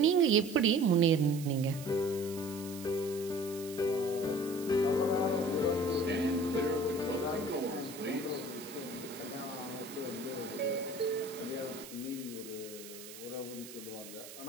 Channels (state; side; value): noise; right; hiss, 14 dB below the sound